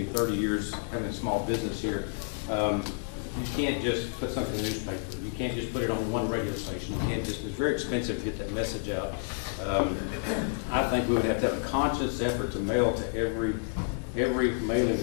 years having a small business here. You can't just put something in the newspaper. You can't just put it on one radio station. You can't just, it's very expensive to get that message out. I think we would have to have a conscious effort to mail to every mailing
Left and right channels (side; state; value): right; silent; digital silence